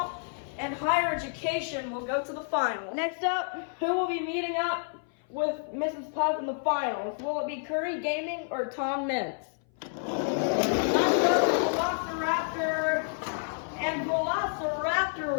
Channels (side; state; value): right; silent; 57 dB below the other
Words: and Higher Education will go to the final. Next up, who will be meeting up with Mrs. Puff in the finals? Will it be Curry Gaming or Tom Mintz? Let's go Velociraptor, and